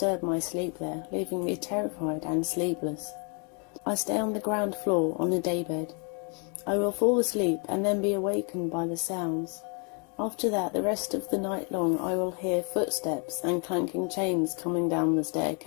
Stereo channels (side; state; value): right; quieter; 37.1 dB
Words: my sleep there, leaving me terrified and sleepless. I stay on the ground floor on a daybed. I will fall asleep and then be awakened by the sounds. After that, the rest of the night long I will hear footsteps and clanking chains coming down the